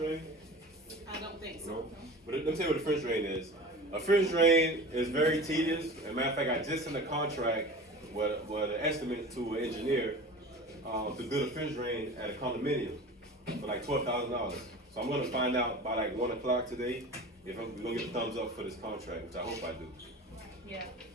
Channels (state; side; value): normal; both; correlation 0.36